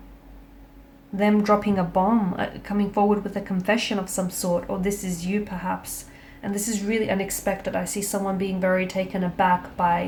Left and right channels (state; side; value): identical; both; correlation 1.00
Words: Them dropping a bomb, coming forward with a confession of some sort, or this is you perhaps. And this is really unexpected. I see someone being very taken aback